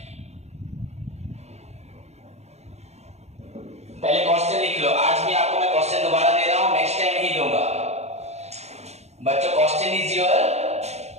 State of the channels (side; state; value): left; late; 0.31 ms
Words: पहले क्वेश्चन लिख लो। आज भी आपको मैं क्वेश्चन दोबारा दे रहा हूं, नेक्स्ट टाइम नहीं दूंगा। बच्चों question is your